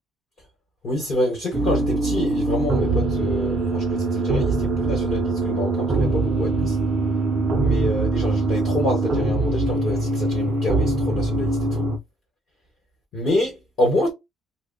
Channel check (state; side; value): normal; both; correlation 0.65